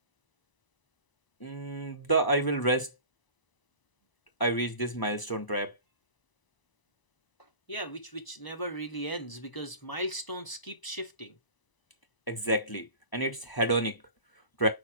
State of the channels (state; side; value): late; right; 1.0 ms